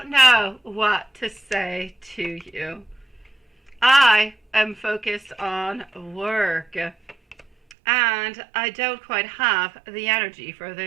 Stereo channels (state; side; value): drops out; left; at 7.8 s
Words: know what to say to you. I am focused on work. And I don't quite have the energy for